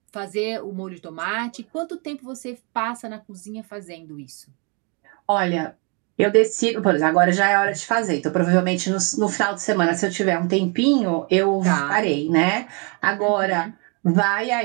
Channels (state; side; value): quieter; left; 34.0 dB